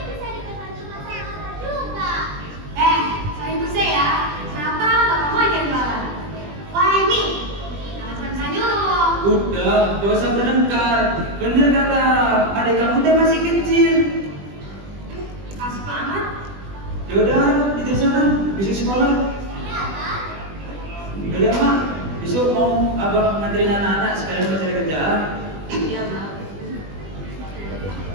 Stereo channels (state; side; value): late; left; 20 ms